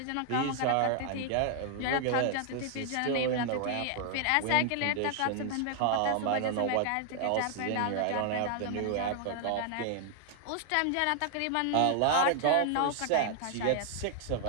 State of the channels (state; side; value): different; both; correlation 0.00